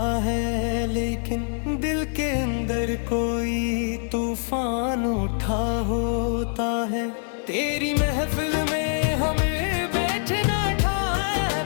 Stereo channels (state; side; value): silent; right; 62 dB below the other